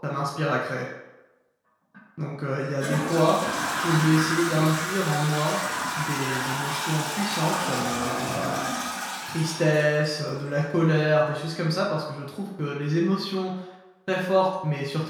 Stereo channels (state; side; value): identical; both; correlation 1.00